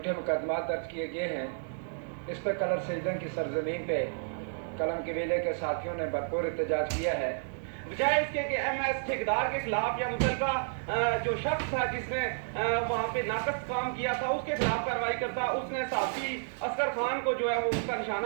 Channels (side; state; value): left; silent; digital silence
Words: मुकदमा दर्ज किए गए हैं, इस पर कलर सईदा की सरजमीन पे कलम कबीले के साथियों ने भरपूर एहतजाज किया है। बजाय इसके कि एमएस ठेकेदार के खिलाफ या मुतलका जो शख्स था जिसने वहाँ पे नाकस काम किया था उसके खिलाफ कार्रवाई करता, उसने सहाफी असगर खान को जो है वो उसका